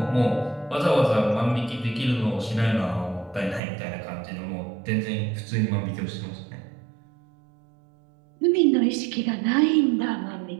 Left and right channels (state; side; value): drops out; left; at 3.6 s